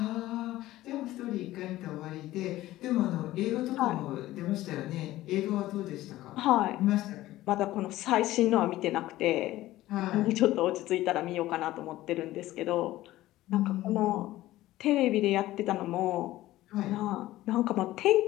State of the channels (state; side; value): quieter; right; 16.0 dB